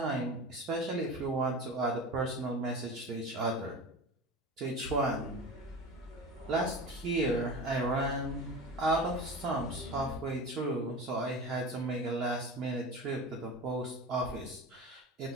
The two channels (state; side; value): normal; both; correlation 0.31